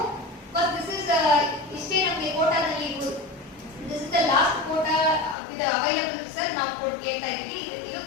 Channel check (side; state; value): right; drops out; at 5.4 s